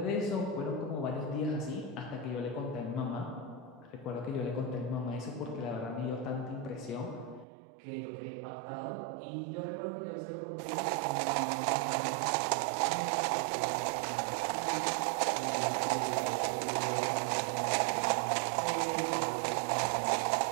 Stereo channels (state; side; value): drops out; left; at 7.5 s